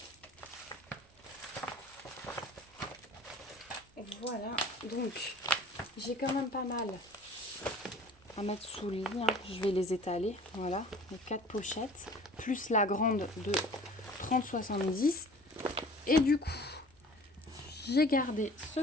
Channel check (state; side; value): normal; both; correlation 0.47